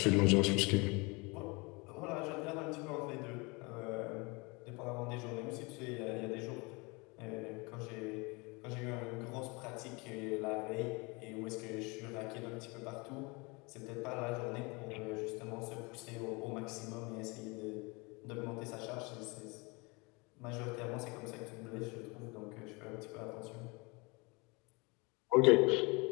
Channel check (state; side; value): quieter; right; 27.6 dB